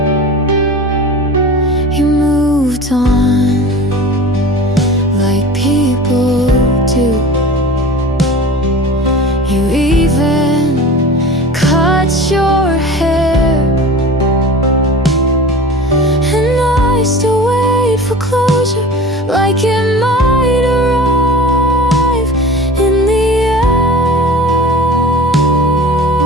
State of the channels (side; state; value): both; normal; correlation 0.37